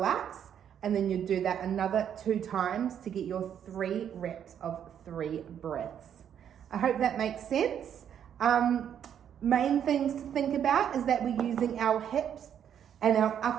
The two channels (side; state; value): left; quieter; 9.1 dB